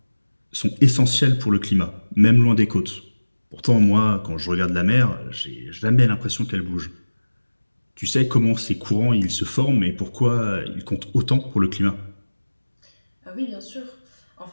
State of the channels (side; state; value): both; inverted; correlation -1.00